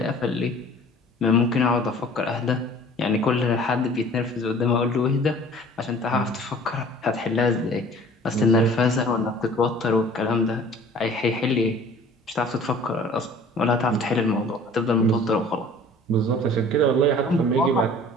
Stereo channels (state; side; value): normal; both; correlation 0.48